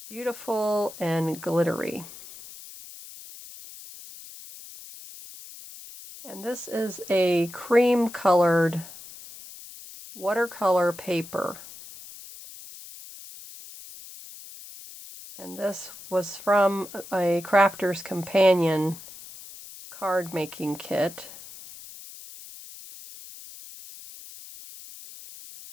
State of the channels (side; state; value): left; noise; hiss, 16 dB below the sound